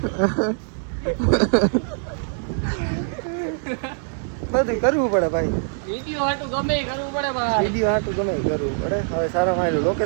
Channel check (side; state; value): left; silent; digital silence